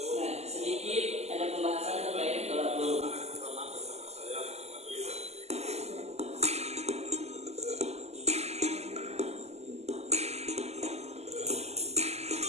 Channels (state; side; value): late; left; 0.31 ms